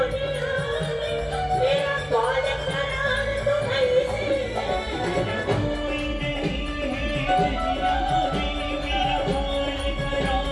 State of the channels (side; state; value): both; identical; correlation 1.00